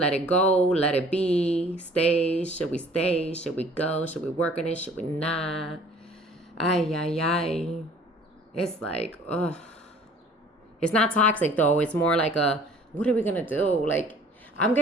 it go, let it be, stay. Should we stay? Should we go? Should we work on it? Should we not? Ay, ay, ay. It's like, ugh. It's not toxic though. It's more like a, what are we gonna do? Like, I'm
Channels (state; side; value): normal; both; correlation 0.52